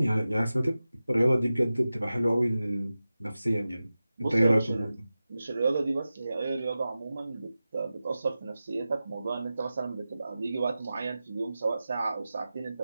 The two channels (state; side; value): inverted; both; correlation -0.94